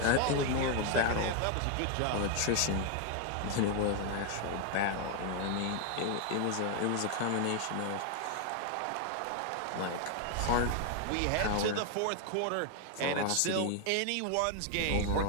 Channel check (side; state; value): both; different; correlation 0.01